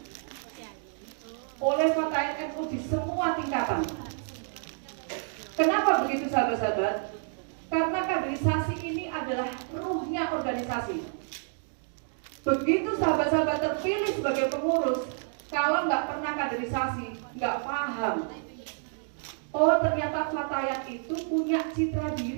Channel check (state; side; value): silent; left; 58 dB below the other